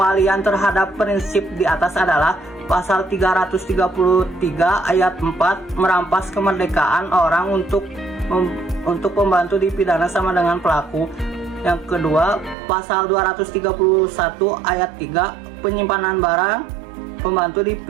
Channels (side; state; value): left; drops out; at 12.6 s